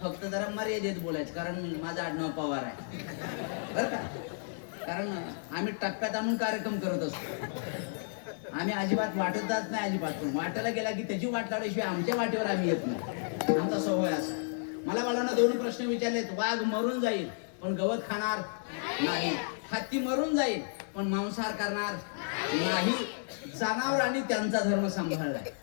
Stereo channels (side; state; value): right; silent; 56 dB below the other